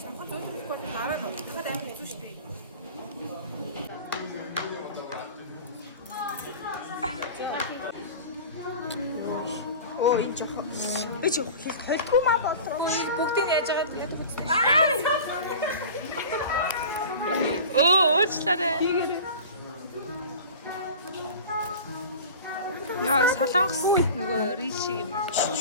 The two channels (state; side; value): inverted; both; correlation -0.37